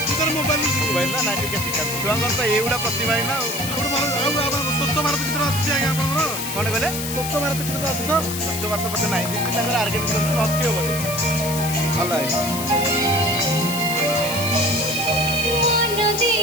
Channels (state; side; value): noise; left; hiss, 6 dB below the sound